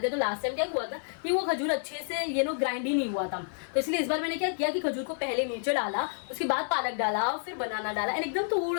है, तो लास्ट टाइम क्या हुआ था कि वो खजूर अच्छे से ग्राइंड ही नहीं हुआ था, तो इसलिए इस बार मैंने क्या किया कि खजूर को पहले नीचे डाला, उसके बाद पालक डाला, फिर बनाना डाला, एंड एकदम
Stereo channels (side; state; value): right; silent; digital silence